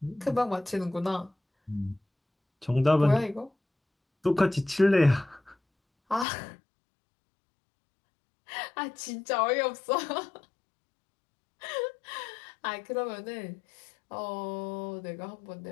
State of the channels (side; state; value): right; drops out; at 6.2 s